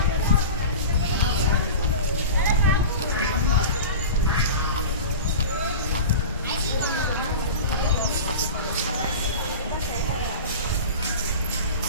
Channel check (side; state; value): both; inverted; correlation -0.32